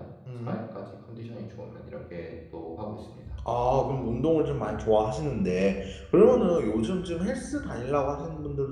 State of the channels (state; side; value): identical; both; correlation 1.00